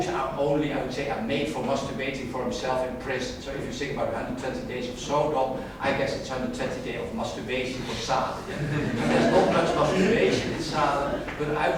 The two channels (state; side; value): identical; both; correlation 1.00